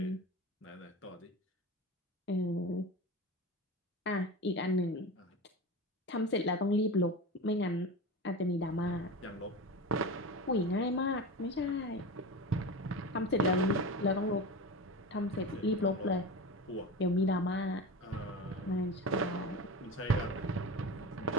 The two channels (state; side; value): normal; both; correlation 0.27